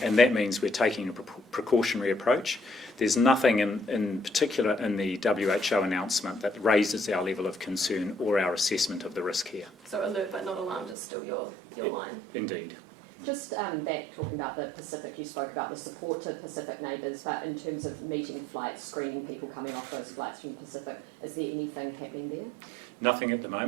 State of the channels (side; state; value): left; drops out; at 11.0 s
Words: and that means we're taking a precautionary approach. There's nothing in particular in the WHO announcement that raises our level of concern or our assessment of the risk here. So alert but not alarmed is still your line? Indeed. Just back talking about the Pacific, you spoke about the support to Pacific neighbours, but in terms of meeting flights, screening people coming off those flights from Pacific, is there anything happening there? Nothing at the